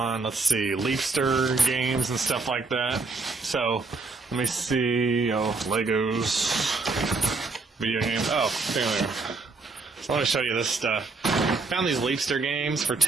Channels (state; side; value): quieter; left; 3.9 dB